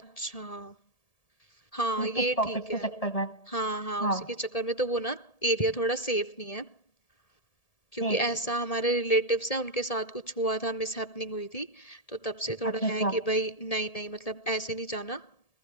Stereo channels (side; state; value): right; late; 1.7 ms